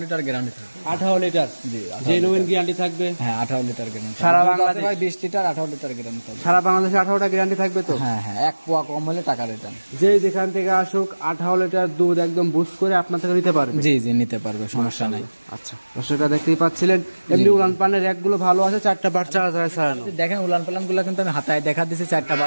লিটার গ্যারান্টি থাকবে। 18 লিটার? জি, জেনুইন গ্যারান্টি থাকবে? হ্যাঁ, 18 লিটার গ্যারান্টি। সারা বাংলাদেশ ভাই 20 লিটার 18 লিটার গ্যারান্টি থাকবে। সারা বাংলাদেশে 18টা গ্যারান্টি থাকবে তো? হ্যাঁ হ্যাঁ, 1 পোয়া কম হলে টাকা রিটার্ন। যেই যেখান থেকে আসুক 18 লিটার দুধ একদম বুস করে আপনার থেকে নিতে পারবে। জি জি, নিতে পারবে, সমস্যা নাই। আচ্ছা, দর্শকরা দেখতেই পাচ্ছিলেন, এমনি উলান পানের র্যাকগুলো ভালো আছে, 4টা বাচ্চা ছাড়ানো। দেখেন উলান পালান গুলো কিন্তু আমি হাতায় দেখা দিচ্ছি, 4টা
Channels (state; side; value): inverted; both; correlation -1.00